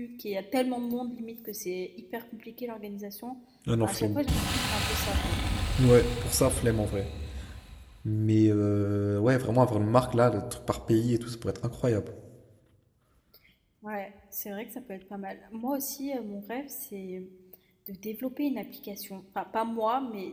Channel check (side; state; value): both; identical; correlation 1.00